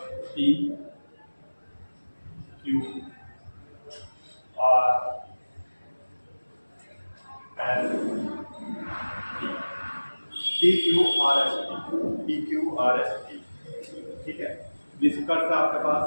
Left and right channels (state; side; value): inverted; both; correlation -1.00